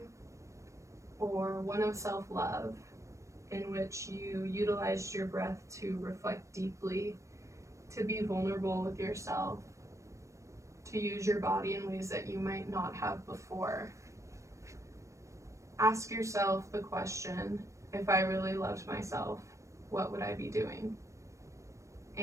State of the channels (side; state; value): left; late; 0.15 ms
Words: or one of self-love, in which you utilized your breath to reflect deeply, to be vulnerable with yourself, to use your body in ways that you might not have before? Ask yourself the question, if I really loved myself, what would I be doing?